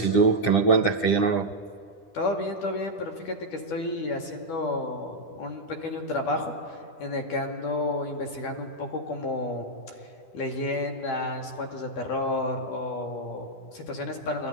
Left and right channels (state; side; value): late; right; 10 ms